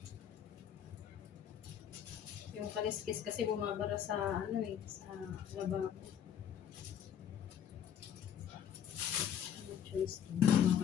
Yung kaliskis kasi bumabara sa ano eh, sa lababo. No choice to.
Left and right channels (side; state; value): right; quieter; 9.2 dB